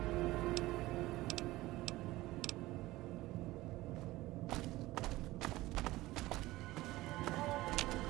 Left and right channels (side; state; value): left; quieter; 18.1 dB